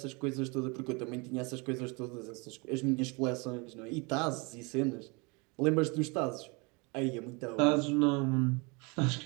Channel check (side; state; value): left; quieter; 29.5 dB